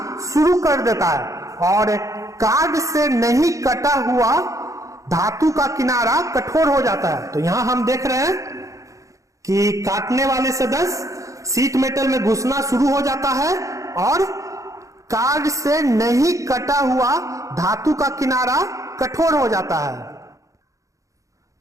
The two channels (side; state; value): left; late; 0.16 ms